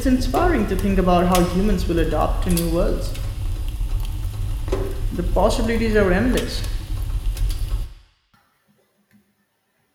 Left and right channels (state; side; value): identical; both; correlation 1.00